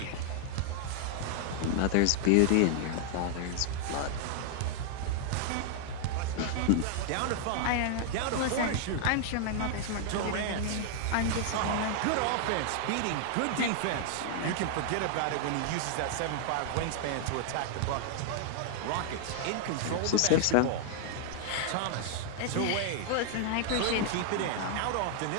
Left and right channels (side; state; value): both; different; correlation -0.01